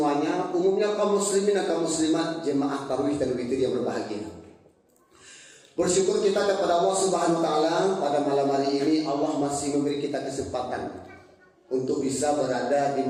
umumnya kaum muslimin dan kaum muslimat, jemaah tarawih dan witir yang berbahagia. Bersyukur kita kepada Allah Subhanahu wa taala pada malam hari ini Allah masih memberi kita kesempatan untuk bisa berada di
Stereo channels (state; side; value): identical; both; correlation 1.00